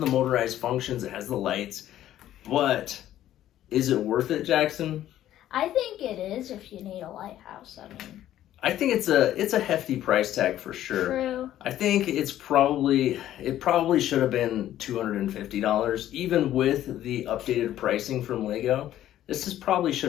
motorized functions, it has the lights, but is it worth it, Jackson? I think it is if you need a lighthouse. I mean, I think it's a hefty price tag for sure. True. I think it probably should have been $250, even with the updated pricing from Lego. This probably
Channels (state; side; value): quieter; right; 12.5 dB